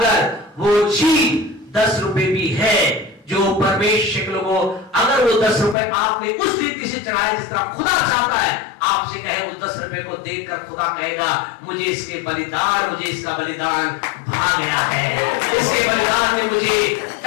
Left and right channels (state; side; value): drops out; right; at 5.8 s